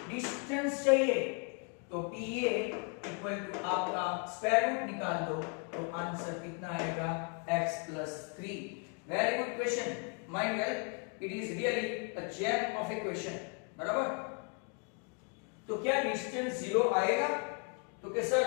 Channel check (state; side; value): quieter; right; 37.9 dB